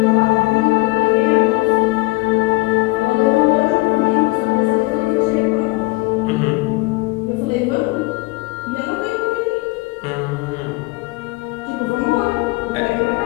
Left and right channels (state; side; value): quieter; right; 23.3 dB